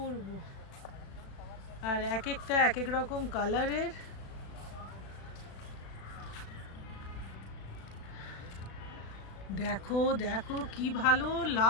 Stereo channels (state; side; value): late; right; 36 ms